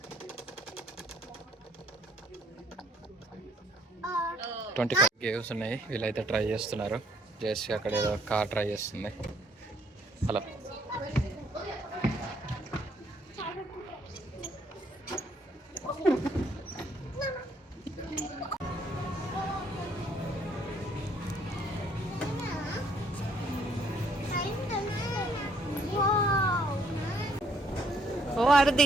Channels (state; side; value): normal; both; correlation 0.66